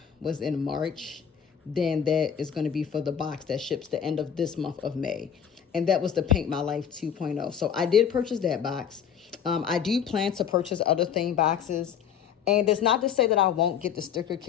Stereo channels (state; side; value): quieter; right; 8.2 dB